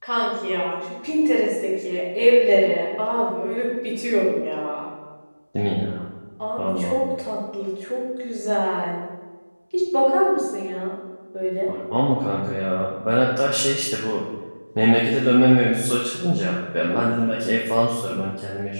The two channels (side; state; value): both; inverted; correlation -1.00